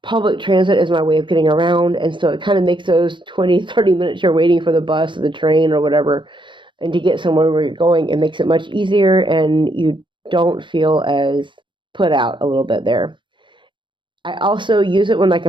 Public transit is my way of getting around. And so it kind of makes those 20, 30 minutes you're waiting for the bus or the train or whatever, and to get somewhere where you're going, it makes it much easier, and you don't feel as put out a little bit there. I also use it when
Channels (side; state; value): left; late; 0.23 ms